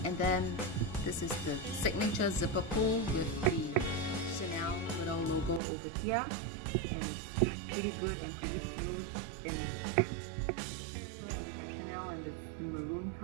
And then this is the signature zipper pull with the Chanel little logo over here, and it's pretty good and pretty smooth. And zipper, we have Chanel, and it's the maroon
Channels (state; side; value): drops out; left; at 5.6 s